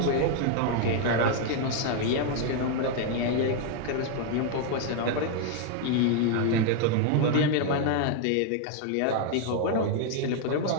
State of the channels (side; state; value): both; different; correlation 0.00